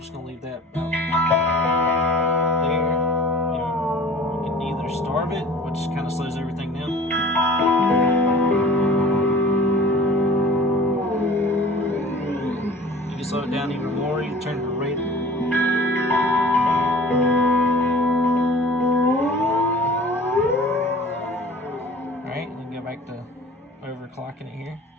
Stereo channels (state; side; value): normal; both; correlation 0.45